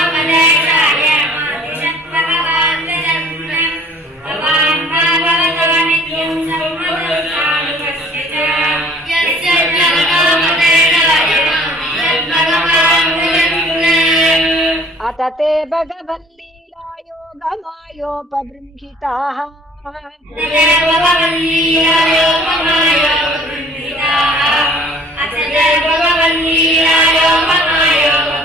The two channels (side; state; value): both; normal; correlation 0.53